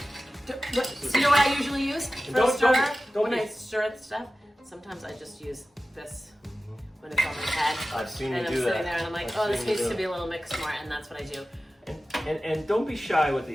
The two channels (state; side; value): normal; both; correlation 0.95